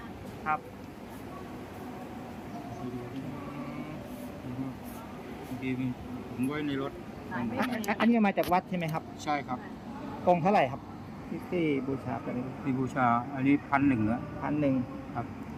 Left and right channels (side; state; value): both; identical; correlation 1.00